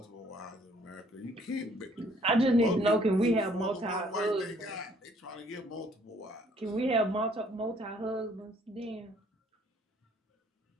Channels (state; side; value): normal; both; correlation 0.62